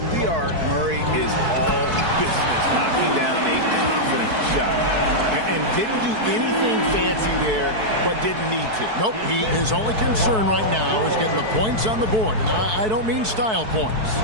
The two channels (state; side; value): late; left; 4.6 ms